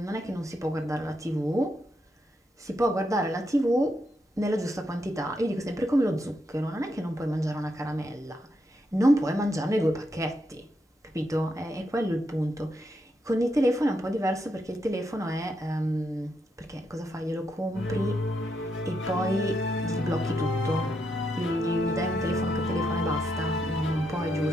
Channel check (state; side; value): normal; both; correlation 0.80